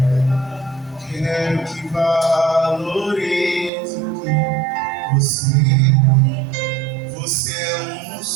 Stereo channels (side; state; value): left; drops out; at 3.7 s